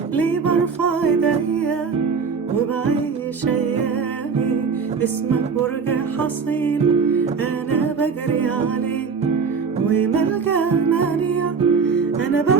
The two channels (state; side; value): quieter; left; 5.6 dB